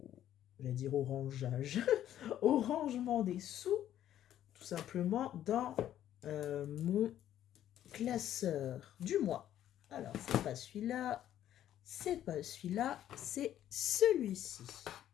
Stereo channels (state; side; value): quieter; right; 11.6 dB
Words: j'allais dire au rangeage, au rangement des sous, tout simplement dans mon classeur du mois. Alors, c'est pas celui-là, c'est pas celui-là, c'est celui-ci.